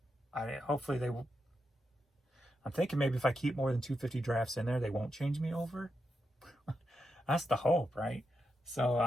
hopefully they will. I'm thinking maybe if I keep more than 250 drafts in there, they won't change me over. That's the hope, right? So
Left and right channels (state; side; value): normal; both; correlation 0.85